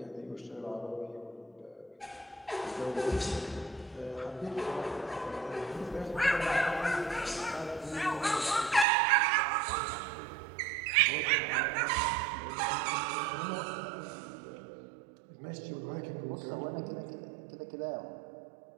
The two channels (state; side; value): drops out; left; at 8.8 s